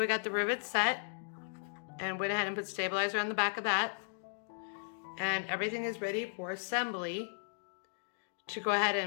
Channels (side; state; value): right; silent; digital silence